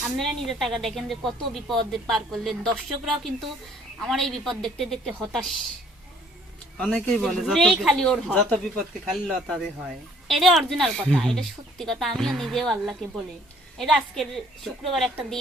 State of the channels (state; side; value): normal; both; correlation 0.59